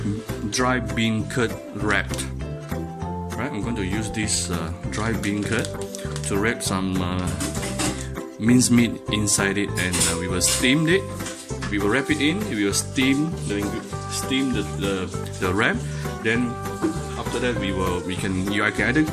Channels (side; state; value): both; identical; correlation 1.00